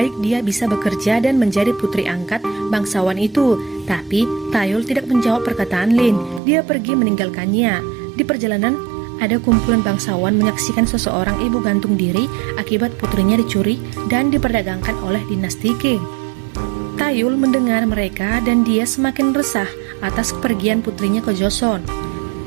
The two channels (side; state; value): left; drops out; at 6.4 s